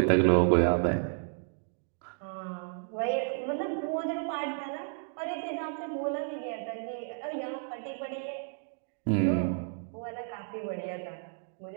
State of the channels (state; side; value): silent; left; 56 dB below the other